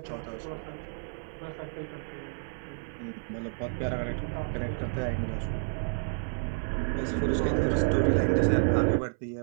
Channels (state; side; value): silent; left; 58 dB below the other